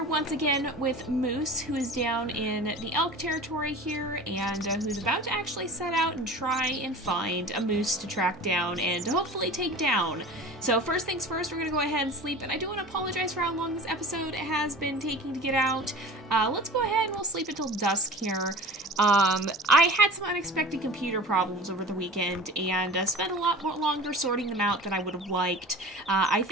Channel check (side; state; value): both; normal; correlation 0.38